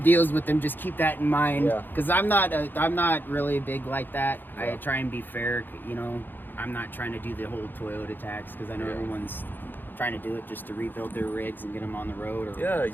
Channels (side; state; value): right; late; 0.092 ms